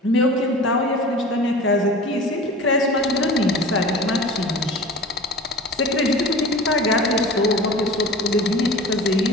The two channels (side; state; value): both; normal; correlation 0.38